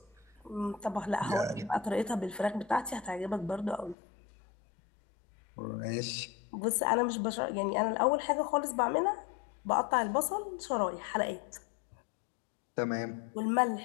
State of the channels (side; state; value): right; drops out; at 4.0 s